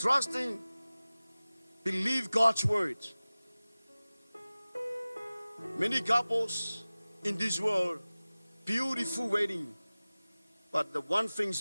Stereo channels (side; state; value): both; inverted; correlation -0.98